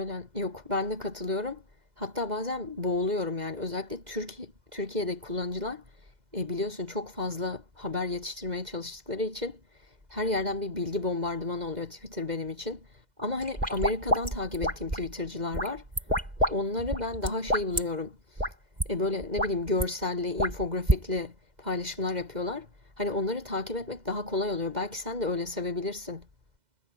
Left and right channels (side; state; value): left; late; 2.0 ms